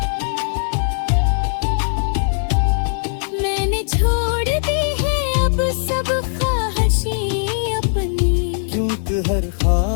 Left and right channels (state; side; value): silent; right; 66 dB below the other